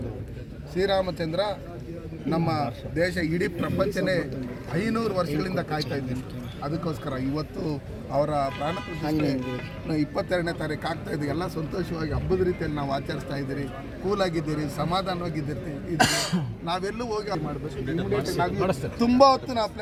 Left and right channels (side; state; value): both; identical; correlation 1.00